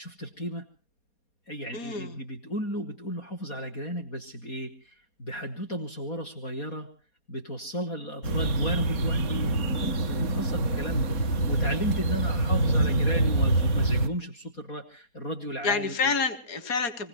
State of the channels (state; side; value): late; right; 4.2 ms